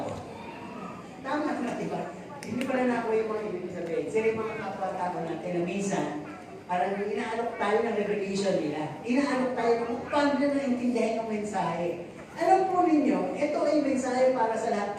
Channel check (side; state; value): both; identical; correlation 1.00